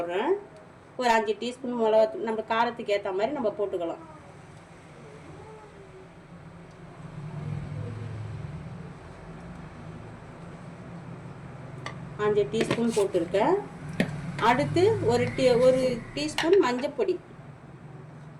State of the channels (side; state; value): both; identical; correlation 1.00